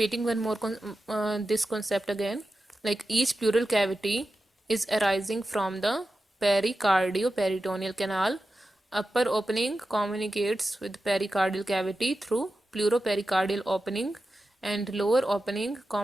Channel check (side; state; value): both; normal; correlation 0.92